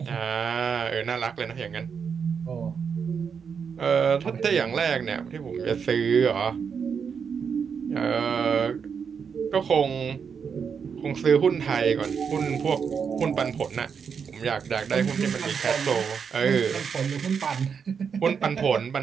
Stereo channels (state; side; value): quieter; left; 6.5 dB